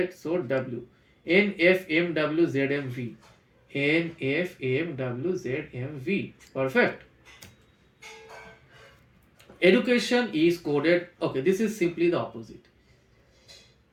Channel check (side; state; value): both; identical; correlation 1.00